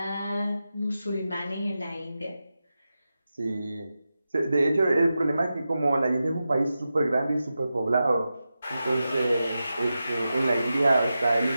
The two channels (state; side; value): inverted; both; correlation -0.91